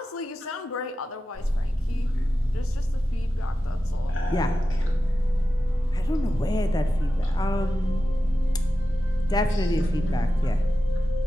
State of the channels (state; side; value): normal; both; correlation 0.92